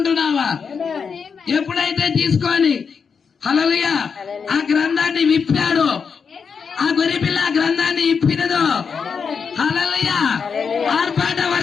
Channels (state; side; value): quieter; right; 6.0 dB